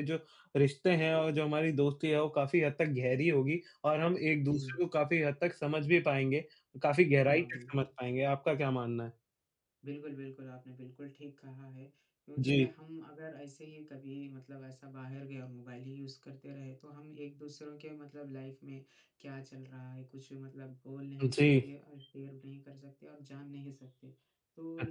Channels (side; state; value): both; identical; correlation 1.00